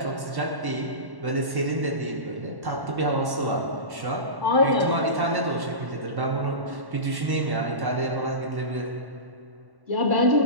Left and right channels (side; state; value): left; late; 1.1 ms